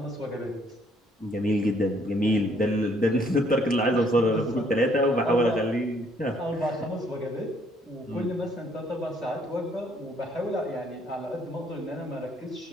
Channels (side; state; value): both; normal; correlation 0.65